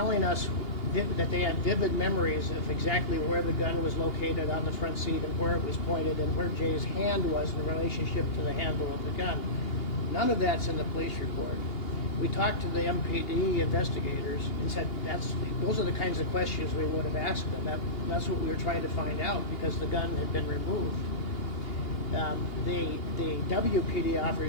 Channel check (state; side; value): late; right; 2.8 ms